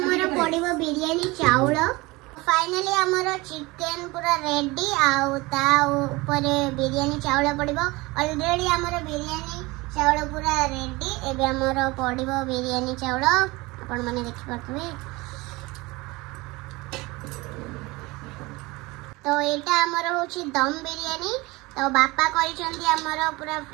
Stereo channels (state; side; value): quieter; left; 22.7 dB